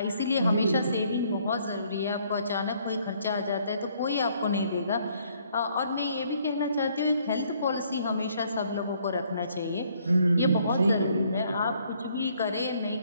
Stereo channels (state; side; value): inverted; both; correlation -0.66